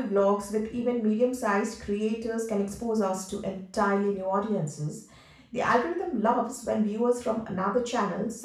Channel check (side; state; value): both; identical; correlation 1.00